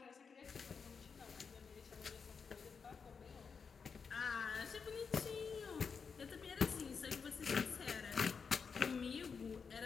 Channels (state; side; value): quieter; right; 5.7 dB